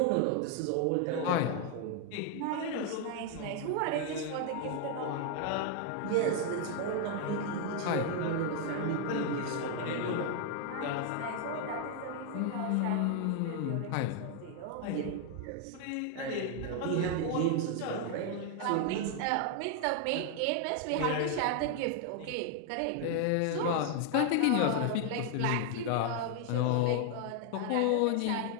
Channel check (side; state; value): both; different; correlation 0.00